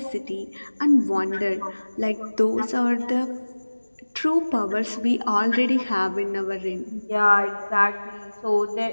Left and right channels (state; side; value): inverted; both; correlation -1.00